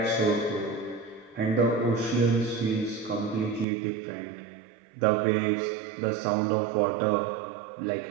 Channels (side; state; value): left; drops out; at 3.7 s